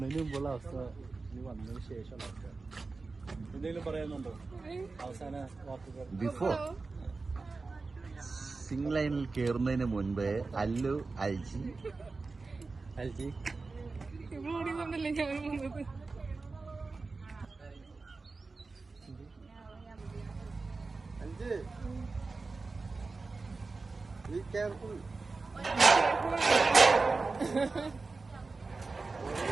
മുമ്പുള്ള അവസ്ഥ ഇനി വന്നതിന് ശേഷമുള്ള അവസ്ഥ. എന്തെങ്കിലും പറയാനുണ്ടോ അവസാന വാക്കുകൾ? ബിഫോർ സിംഗ് ലൈനിൽ കയറുന്നതിന് മുൻപേ അല്ലു അൽജി Be careful.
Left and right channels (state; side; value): quieter; left; 3.9 dB